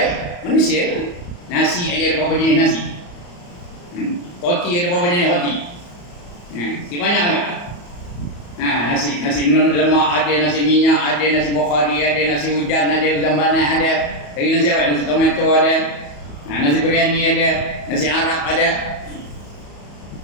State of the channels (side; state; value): right; late; 34 ms